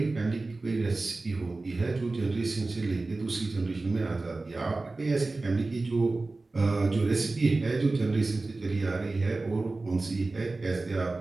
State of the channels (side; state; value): left; quieter; 3.3 dB